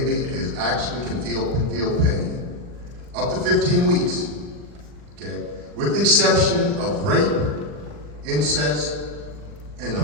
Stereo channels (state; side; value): late; left; 40 ms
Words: can feel pain. Up to 15 weeks, okay? With the exception of rape, incest, and the